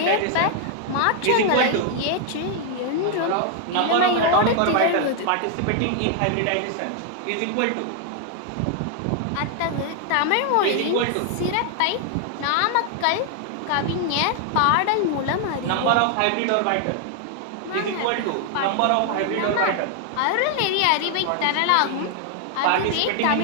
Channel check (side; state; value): both; different; correlation 0.00